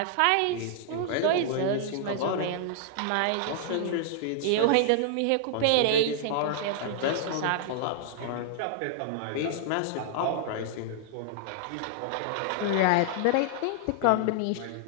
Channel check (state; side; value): different; both; correlation -0.01